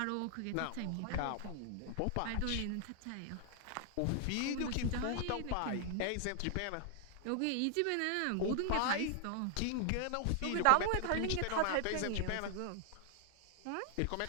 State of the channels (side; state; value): both; different; correlation 0.00